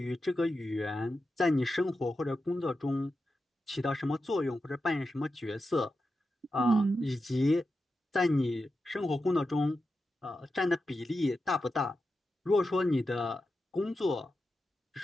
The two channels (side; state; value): both; normal; correlation 0.90